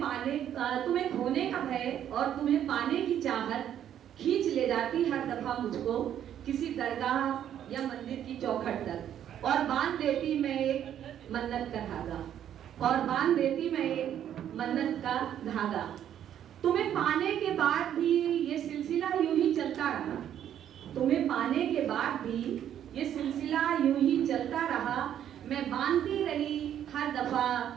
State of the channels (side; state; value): left; quieter; 10.2 dB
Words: खोने का भय और तुम्हें पाने की चाहत खींच ले जाती हर दफा मुझको किसी दरगाह या मंदिर की चौखट तक, और बांध देती मैं एक मन्नत का धागा, और बांध देती मैं एक मन्नत का धागा। तुम्हें पाने के बाद भी ये सिलसिला यूं ही चलता रहा, तुम्हें पाने के बाद भी ये सिलसिला यूं ही चलता रहा। मैं बांधती रही हर दफा